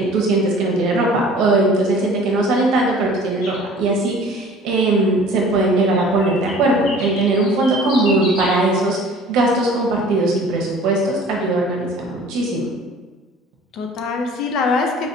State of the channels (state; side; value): normal; both; correlation 0.47